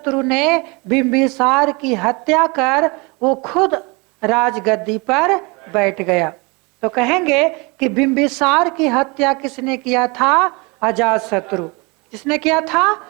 ने बिंबिसार की हत्या कर वो खुद राजगद्दी पर बैठ गया। तो कहेंगे कि बिंबिसार की हत्या किसने किया था? अजातशत्रु। किसने किया था?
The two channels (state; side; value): quieter; left; 28.3 dB